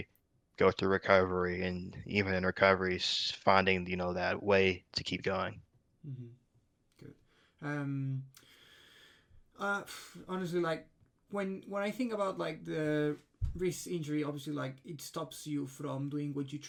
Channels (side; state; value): both; identical; correlation 1.00